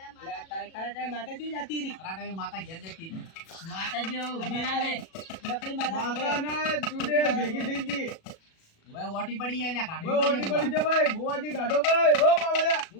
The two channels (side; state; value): right; late; 37 ms